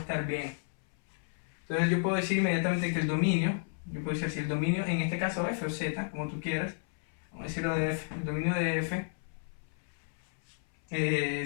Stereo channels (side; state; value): right; silent; 56 dB below the other